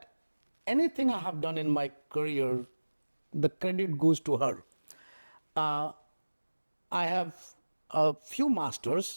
anything I have done in my career, the credit goes to her. Uh, I have a few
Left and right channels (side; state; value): both; inverted; correlation -1.00